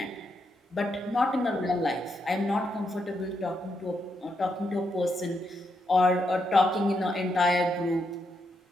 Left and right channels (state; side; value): normal; both; correlation 0.81